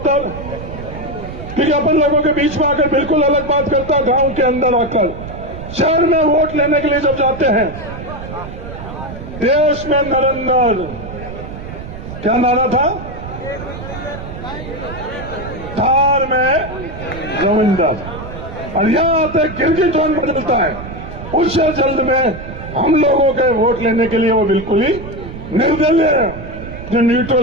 क्योंकि अपन लोगों के बीच में आकर बिल्कुल अलग बात करता, गांव के अंदर आकर शहर में वोट लेने के लिए जब जाते हैं, देश में नरेंद्र, क्या नारा था, थार में रविंदर, और यहां आते गिरगिट टोन बदलता है। उससे जल्द में हम लोगों के वोट लेने के लिए वो बिल्कुल ही निर्दलीय है, जो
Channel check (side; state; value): right; noise; rumble, 11 dB below the sound